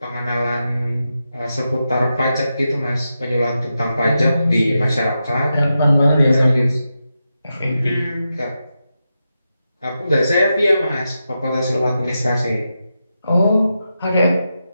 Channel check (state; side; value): inverted; both; correlation -0.88